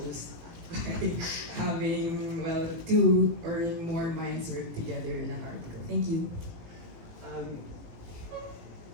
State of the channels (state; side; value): late; left; 18 ms